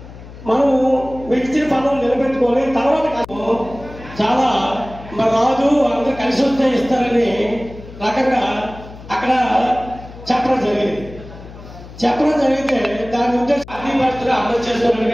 మనం విడిచిన పనులు నిలబెట్టుకొని తర్వాత చాలా మన రాజు అందరూ కలిసి వస్తే ఇస్తారని రకంగా అక్కడ చెప్పడం జరిగితే దాని ఉద్దేశం అన్ని పరిస్థితులు అమలు చేసుకోవడానికి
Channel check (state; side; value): noise; left; hum, 16 dB below the sound